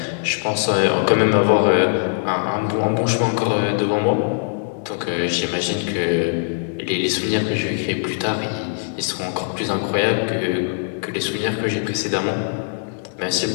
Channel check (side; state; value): right; silent; digital silence